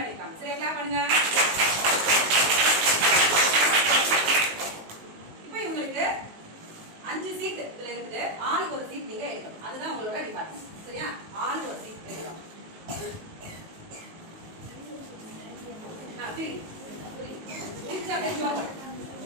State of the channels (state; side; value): late; left; 19 ms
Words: சரி, கிளாப் பண்ணுங்க. இப்போ இவங்களுக்கு 5 சீட் இதுல இருக்குது. ஆளுக்கு ஒரு சீட் நீங்க எடுக்கணும். அதுதான் உங்களோட டிபார்ட்மெண்ட். சரியா? ஆளுக்கு ஒரு சீட் எடுக்கணும்.